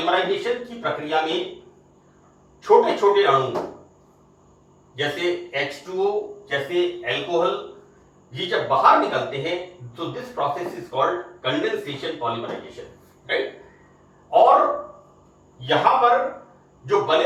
की प्रक्रिया में छोटे छोटे अणु, जैसे H2O, जैसे अल्कोहल, ये जब बाहर निकलते हैं, तो this process is called condensation polymerisation, right. और यहां पर जो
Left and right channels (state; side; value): identical; both; correlation 1.00